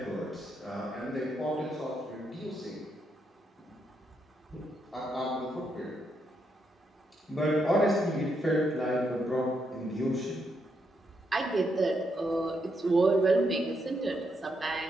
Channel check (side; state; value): both; normal; correlation 0.79